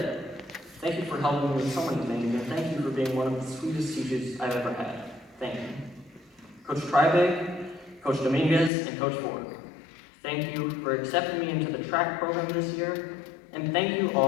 Thank you for helping me with so many things, and thank you for being one of the sweetest teachers I've ever had. Thank you. Coach Tribig, Coach Dominguez, and Coach Ford, thank you for accepting me into the track program this year, and thank you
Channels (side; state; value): right; drops out; at 8.7 s